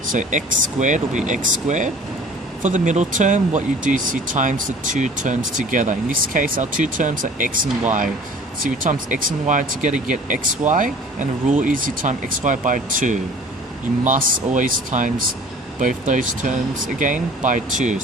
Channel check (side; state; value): both; normal; correlation 0.47